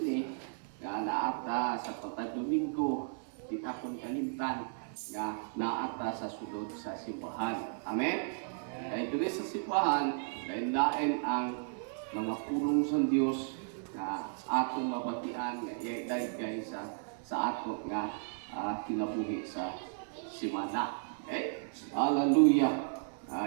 nga naata sa patag Domingo, di akong kalimtan nga naata sa sulod sa simbahan. Amen? Kaya ito sa simbahan, lain-lain ang mga pulong sa Diyos na atong mabatian nga iagay sa ato nga kinabuhi sa simana. Okay? Hallelujah!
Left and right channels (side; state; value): left; silent; 55 dB below the other